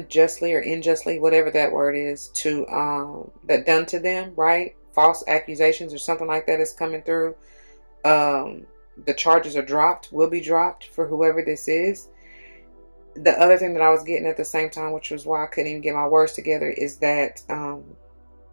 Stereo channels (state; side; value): inverted; both; correlation -1.00